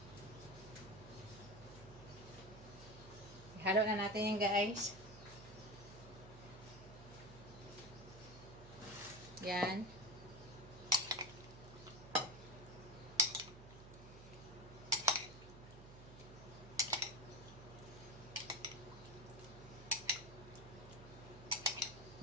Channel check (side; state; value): right; noise; hum, 15 dB below the sound